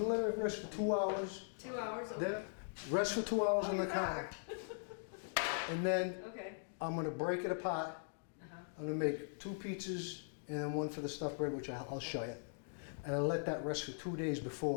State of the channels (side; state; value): right; silent; digital silence